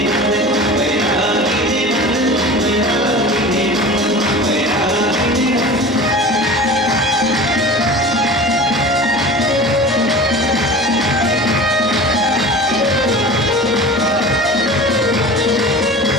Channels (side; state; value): both; normal; correlation 0.36